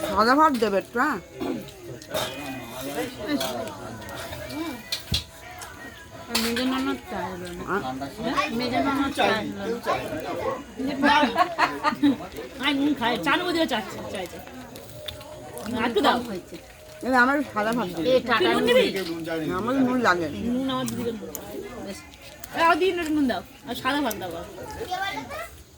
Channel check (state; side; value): identical; both; correlation 1.00